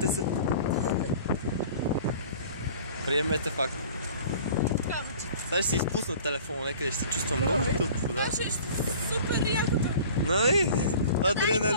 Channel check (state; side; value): inverted; both; correlation -0.45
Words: се. Приемете факт. Сега ще си изпусна телефона, някъде ще се чувствам много тъпо. Да. Ще супер якото. Нали?